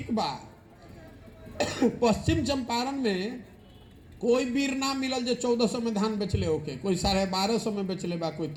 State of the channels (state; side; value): identical; both; correlation 1.00